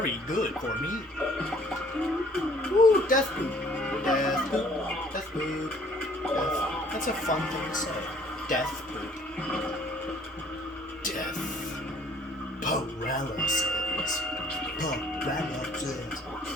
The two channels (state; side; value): normal; both; correlation 0.57